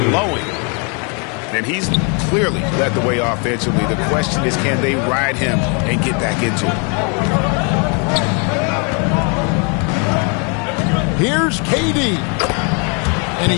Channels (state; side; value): quieter; right; 35.8 dB